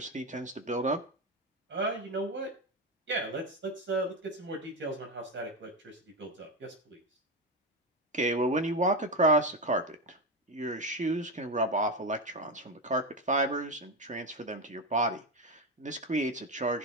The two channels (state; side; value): normal; both; correlation 0.14